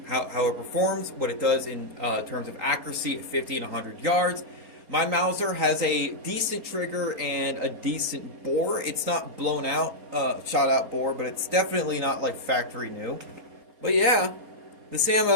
how it performs, what it does in terms of accuracy at 50 and 100 yards. My Mauser has a decent trigger and a decent bore. It's not blown out, shot out bore, but it's definitely not like factory new. But yeah, this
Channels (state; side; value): late; left; 4.3 ms